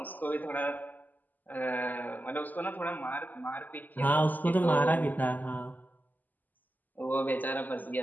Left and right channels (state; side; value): late; right; 0.084 ms